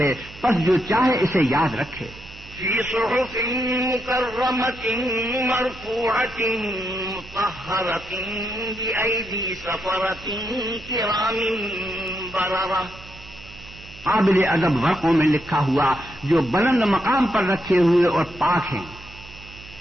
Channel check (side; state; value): right; noise; hum, 18 dB below the sound